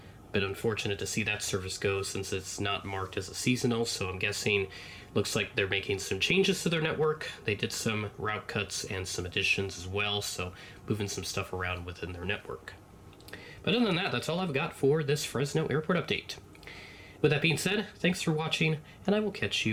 a bit unfortunate to see that service go since it's not marked as a seasonal, so I'm guessing looks like they're making some changes to their network. They did some route cuts and some additions as well, so moving some stuff around within their network. But other than that, that's all I've got for this Fresno airport update. With that being said, thanks for watching, and I will catch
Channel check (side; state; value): both; identical; correlation 1.00